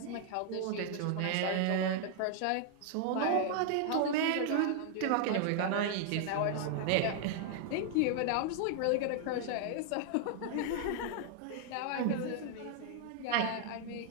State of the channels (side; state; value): both; different; correlation 0.00